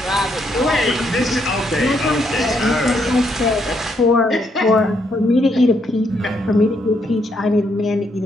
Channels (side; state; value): both; normal; correlation 0.75